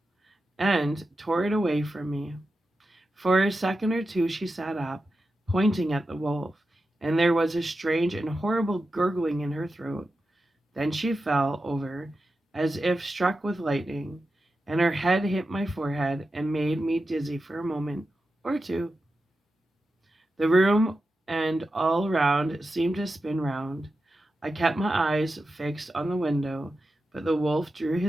and tore it away from me. For a second or two she sat up, pointing at the wolf, and there was a strange and horrible gurgling in her throat. Then she fell over as if struck with lightning, and her head hit my forehead and made me dizzy for a moment or two. The room and all around seemed to spin round. I kept my eyes fixed on the window, but the wolf drew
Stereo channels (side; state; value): both; normal; correlation 0.91